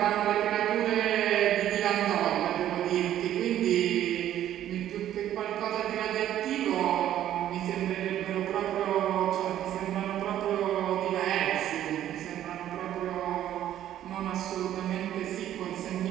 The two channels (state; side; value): quieter; left; 11.8 dB